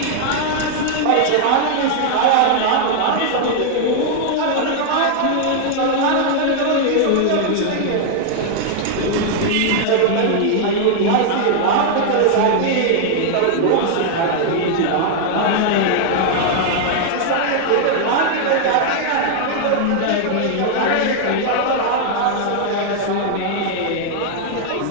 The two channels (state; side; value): different; both; correlation 0.00